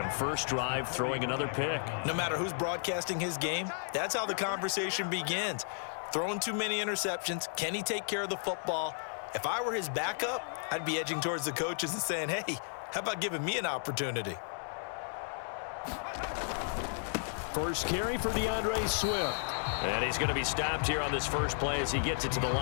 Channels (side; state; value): right; silent; 55 dB below the other